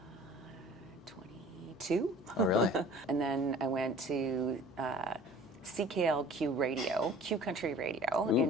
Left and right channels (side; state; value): left; noise; hum, 26 dB below the sound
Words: 22. Oh, really? And then I went to CKLQ Radio, Q Country Radio